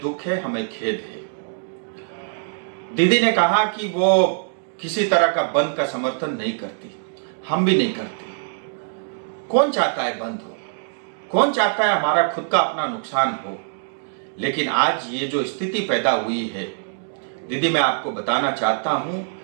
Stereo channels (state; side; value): silent; left; digital silence